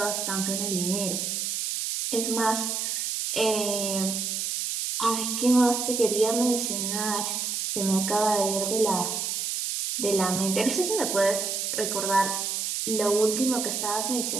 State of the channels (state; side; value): noise; right; hiss, 1 dB below the sound